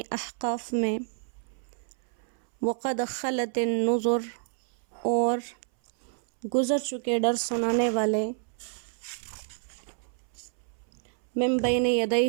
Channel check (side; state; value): left; silent; 59 dB below the other